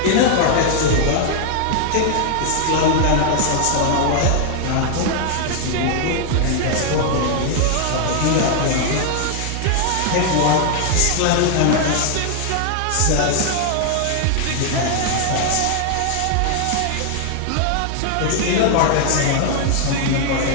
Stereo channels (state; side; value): different; both; correlation 0.00